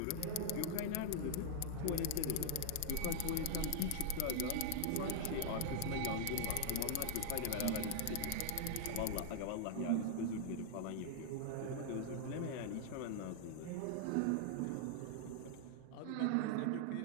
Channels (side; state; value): both; different; correlation 0.00